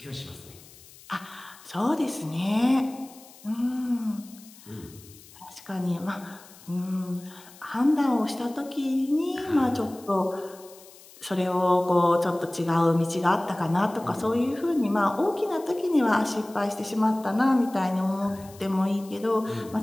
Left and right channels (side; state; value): left; noise; hiss, 22 dB below the sound